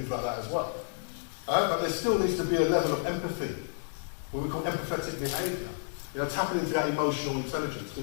like that as well. But there still needs to be a level of empathy, what we call empathetic behaviour. Tapping into that emotional intelligence.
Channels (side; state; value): right; silent; digital silence